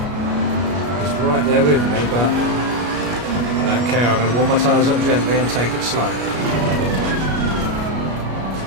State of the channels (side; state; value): left; late; 33 ms